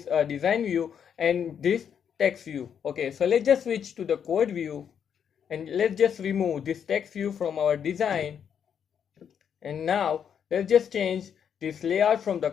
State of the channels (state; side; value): quieter; right; 8.0 dB